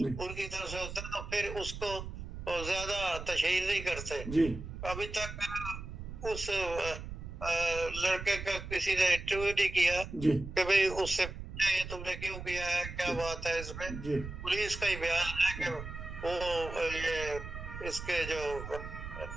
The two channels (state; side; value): noise; right; rumble, 9 dB below the sound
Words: उनकी तरफ से होता है तो फिर उसको ज्यादा तशहीर नहीं करते। जी अभी तक उस लड़के का किसी ने इंटरव्यू नहीं किया जी कि भाई उससे ये तुमने क्यों किया है, क्या बात है इसमें। जी पुलिस का ही बयान है कि वो ये इसके जो